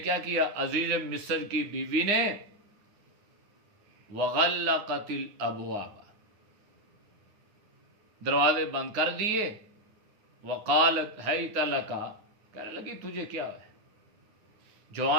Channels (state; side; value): late; left; 9.8 ms